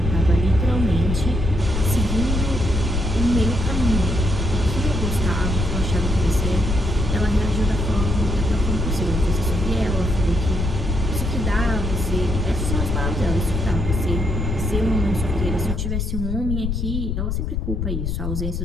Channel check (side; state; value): left; noise; rumble, 1 dB below the sound